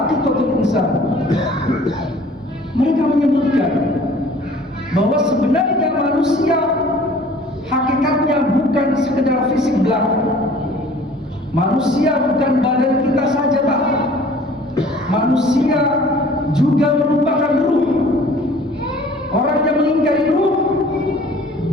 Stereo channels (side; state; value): both; normal; correlation 0.50